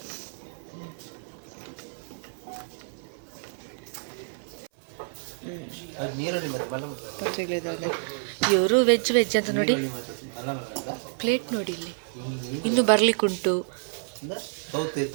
ಪತ್ರಿಕೆದಾರೆ ಇವರು ವೆಜ್ ಅಂತ ನೋಡಿ ಪ್ಲೇಟ್ ನೋಡಿ ಇಲ್ಲಿ ಇನ್ನು ಬರ್ಲಿಕ್ಕುಂಟು.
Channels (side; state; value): left; silent; 59 dB below the other